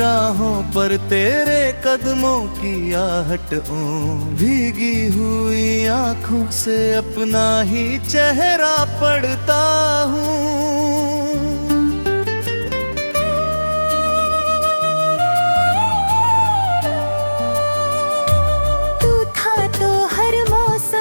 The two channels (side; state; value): both; inverted; correlation -1.00